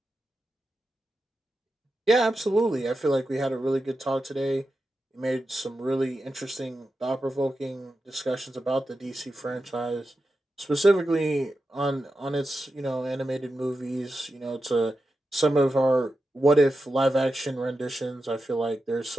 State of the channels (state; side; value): normal; both; correlation 0.90